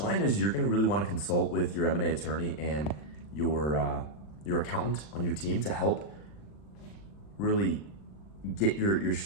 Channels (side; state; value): right; late; 40 ms